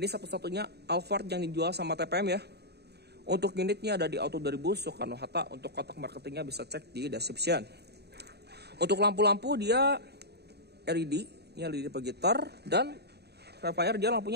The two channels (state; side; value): late; left; 0.48 ms